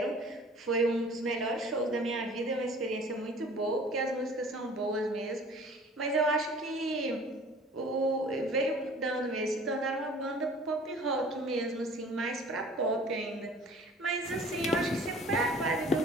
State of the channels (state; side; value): normal; both; correlation 0.48